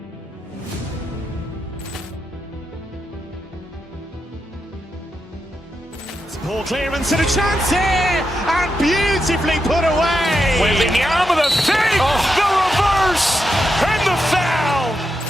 Ball clearance and a chance here, and beautifully put away. Wembanyama the fake, the reverse, and the foul.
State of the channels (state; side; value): normal; both; correlation 0.86